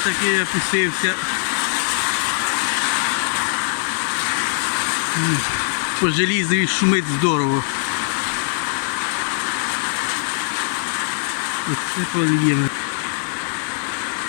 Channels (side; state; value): right; silent; digital silence